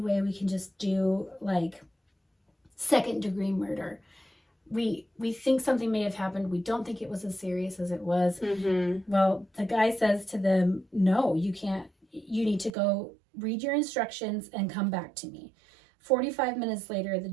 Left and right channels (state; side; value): drops out; left; at 12.7 s